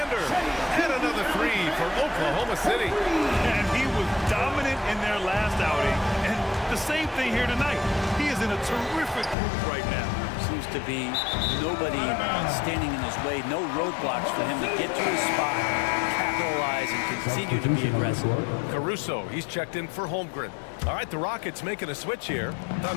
And another 3 for Oklahoma City. And he was dominant in their last outing. And the same thing here tonight. He is in a terrific group right now. Seems to be nobody standing in his way. No roadblocks for him to get to his spot, capitalize, and continue to be aggressive. Caruso, he's checked in for Holmgren. All right, the Rockets making a switch here.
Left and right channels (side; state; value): right; drops out; at 9.3 s